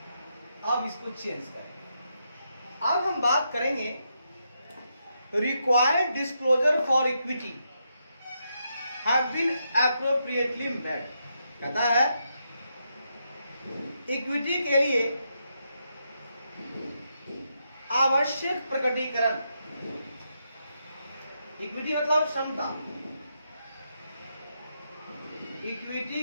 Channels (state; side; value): inverted; both; correlation -0.82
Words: अब इसको चेंज करें। अब हम बात करेंगे required disclosure for equity have been appropriately made. कहता है इक्विटी के लिए आवश्यक प्रकटीकरण, इक्विटी मतलब क्षमता, इक्विटी